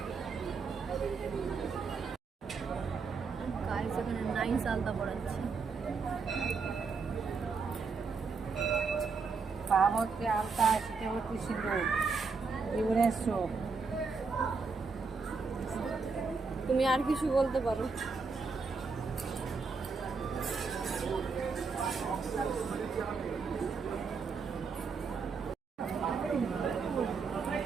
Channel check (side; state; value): left; quieter; 4.8 dB